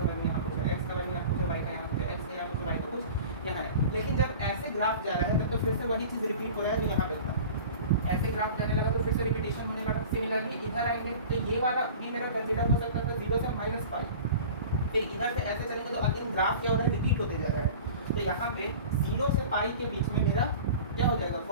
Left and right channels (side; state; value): both; inverted; correlation -0.39